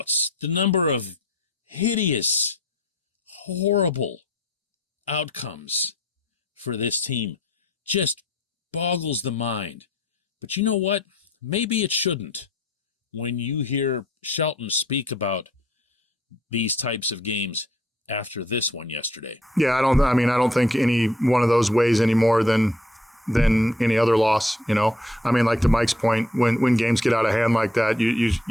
the number of hideous, horrible outcomes for this team just boggles the mind. But you know what? Maybe it shouldn't. When you hear Shelton speak about these types of games after this one yesterday. Yeah, I don't think any one of those weighs any more than any other loss, you know. I mean, like to Mike's point, when games get out of hand like that,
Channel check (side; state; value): both; normal; correlation 0.60